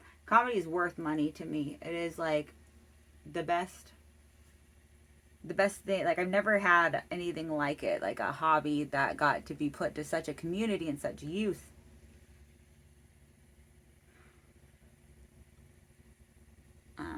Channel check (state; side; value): identical; both; correlation 1.00